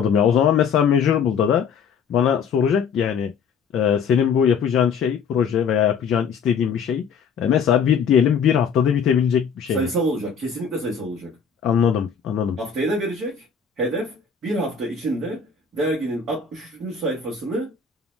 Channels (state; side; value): quieter; right; 6.3 dB